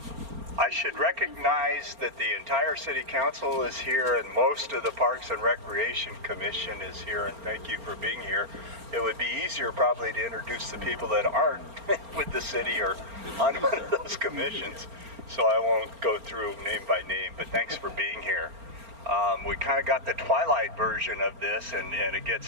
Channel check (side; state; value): left; late; 4.3 ms